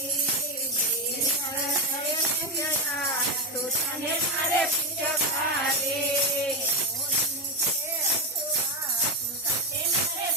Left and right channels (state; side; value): normal; both; correlation 0.09